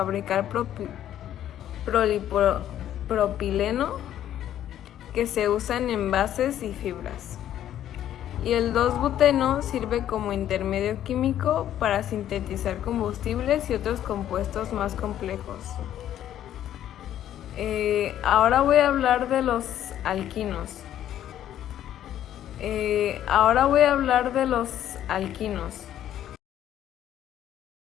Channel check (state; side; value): quieter; right; 11.4 dB